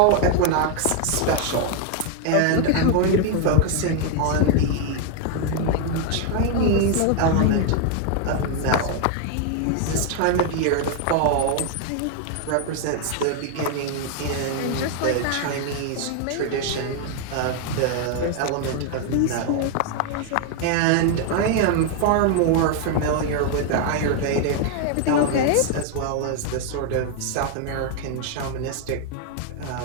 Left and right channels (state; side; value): different; both; correlation 0.00